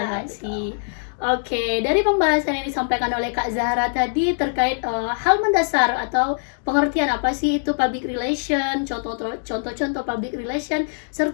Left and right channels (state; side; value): silent; right; digital silence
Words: Oke, dari pembahasan yang disampaikan oleh Kak Zahra tadi terkait hal mendasar atau pengertian apa sih itu public relation, contoh-contoh public relation,